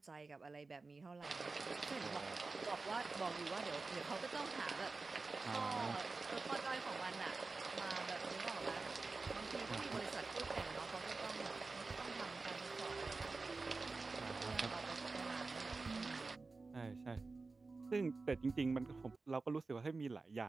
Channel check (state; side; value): quieter; left; 3.8 dB